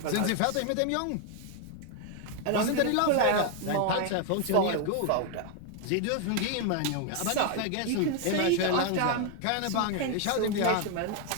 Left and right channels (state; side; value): different; both; correlation 0.01